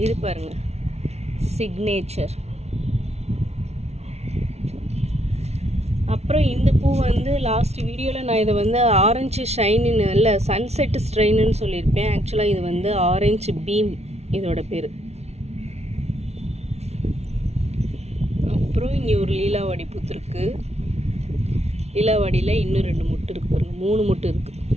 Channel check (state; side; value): late; left; 0.31 ms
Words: இது பாருங்கள், சிக்னேச்சர். அப்புறம் இந்த பூ வந்து லாஸ்ட் வீடியோவில் நான் இதை வந்து ஆரஞ்சு ஷைனின்னு இல்லை சன்செட் ஸ்ட்ரெயின்னு சொல்லியிருப்பேன். ஆக்சுவலாக இது வந்து ஆரஞ்சு பீம் இதோட பேர். அப்புறம் இங்கே ஒரு லீலாவாடி பூத்துருக்கு. லீலாவாடியில் இன்னும் 2 மொட்டு இருக்குது பாருங்கள், 3 மொட்டு இருக்குது.